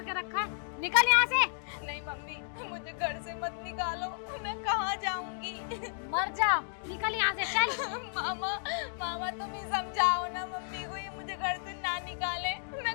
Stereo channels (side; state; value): right; silent; digital silence